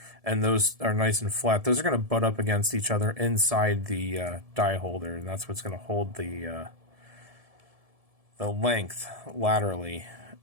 and those are nice and flat. Those are going to butt up against each other inside the die holder, and that's what's going to hold the length laterally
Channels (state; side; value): late; left; 1.7 ms